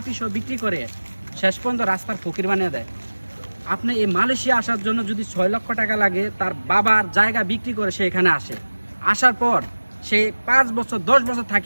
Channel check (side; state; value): both; inverted; correlation -1.00